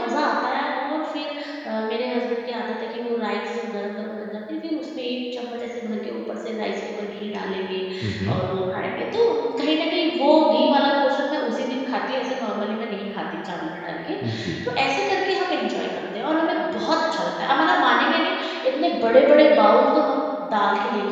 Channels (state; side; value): identical; both; correlation 1.00